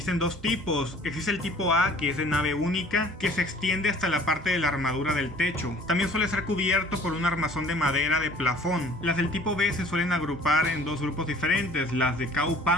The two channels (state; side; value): normal; both; correlation 0.52